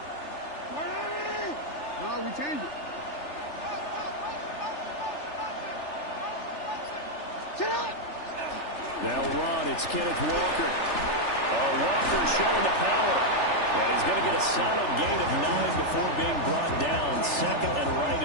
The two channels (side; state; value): right; late; 3.4 ms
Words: No, we change it. They'll run. It's Kenneth Walker. Walker showing the power. And he's going to get a solid gain of 9 before being brought down. Second and right